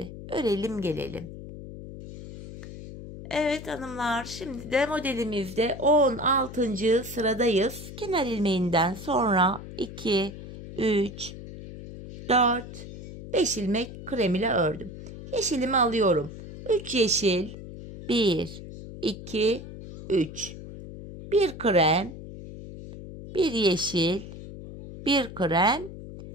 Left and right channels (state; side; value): noise; left; hum, 12 dB below the sound